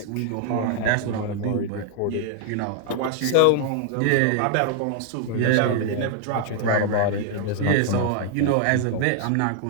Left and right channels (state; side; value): different; both; correlation 0.00